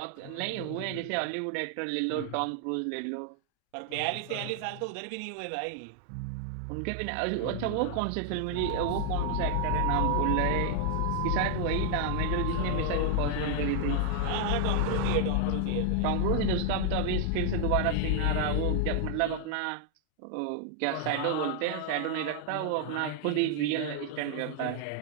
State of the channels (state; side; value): different; both; correlation 0.00